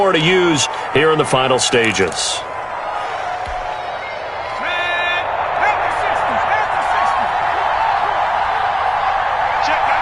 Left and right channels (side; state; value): both; identical; correlation 1.00